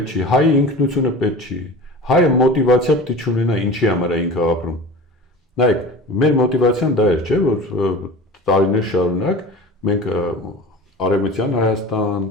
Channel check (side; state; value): both; normal; correlation 0.35